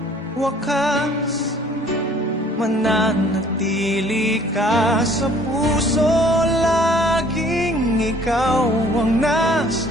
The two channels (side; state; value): both; normal; correlation 0.56